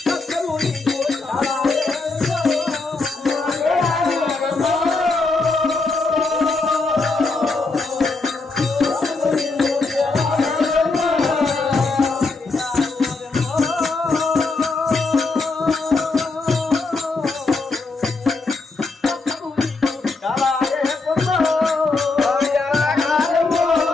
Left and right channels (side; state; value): right; quieter; 3.7 dB